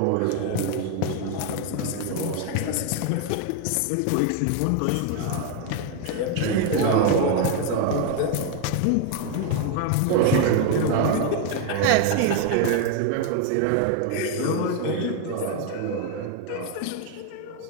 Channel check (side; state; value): both; different; correlation 0.01